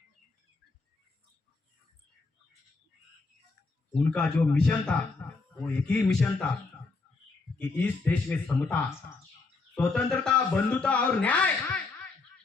उनका जो मिशन था वो एक ही मिशन था कि इस देश में समता, स्वतंत्रता, बंधुता और न्याय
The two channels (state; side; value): quieter; right; 3.9 dB